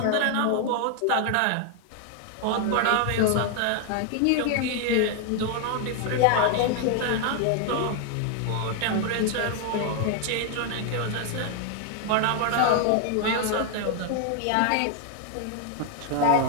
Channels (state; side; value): different; both; correlation 0.00